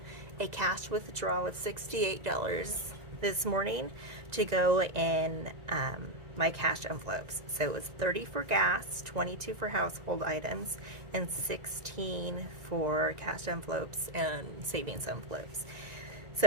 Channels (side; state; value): left; late; 1.9 ms